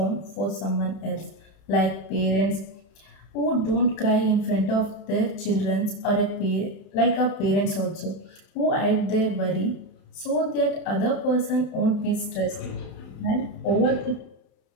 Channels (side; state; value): right; late; 31 ms